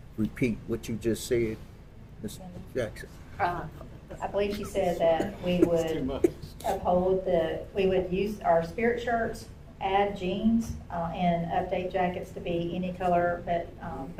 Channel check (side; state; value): both; identical; correlation 1.00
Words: repeat what you just said, Ms. Jackson. I believe she said that we Too would much. uphold we would use our spirit shirts, add jeans, and update jackets to be any color,